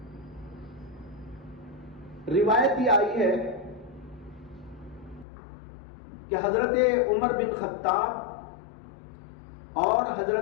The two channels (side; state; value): right; drops out; at 5.2 s